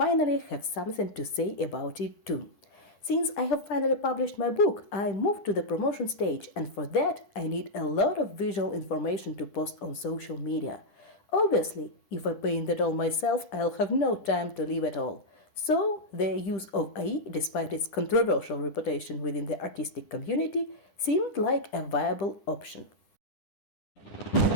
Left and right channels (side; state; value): right; late; 10 ms